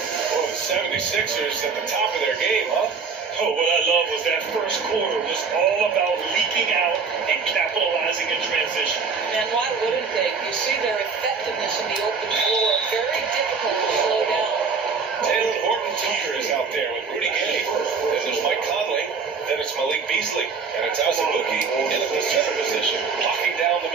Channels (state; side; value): quieter; left; 5.2 dB